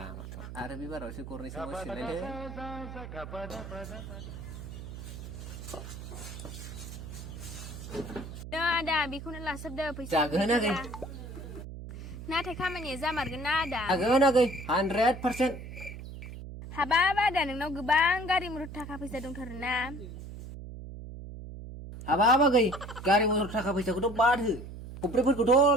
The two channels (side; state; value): right; noise; hum, 11 dB below the sound